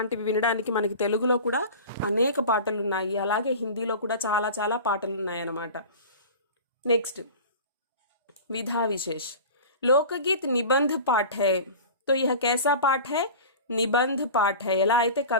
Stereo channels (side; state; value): both; inverted; correlation -0.35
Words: వినడానికి మనకి తెలుగులో కూడా అనేక పాటలు ఉన్నాయి, అలాగే హిందీలో కూడా చాలా చాలా పాటలు ఉన్నాయి అన్నమాట. నెక్స్ట్ विधा विशेष. लोकगीत निबंध पाठ है. तो यह कैसा पाठ है? నిబంధ్ పాఠ. ఎలా అయితే